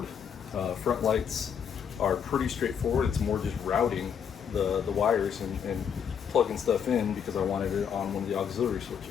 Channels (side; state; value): right; quieter; 7.7 dB